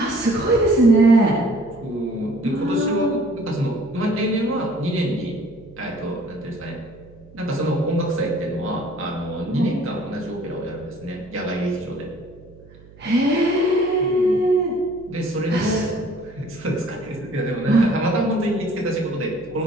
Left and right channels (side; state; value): right; noise; hum, 23 dB below the sound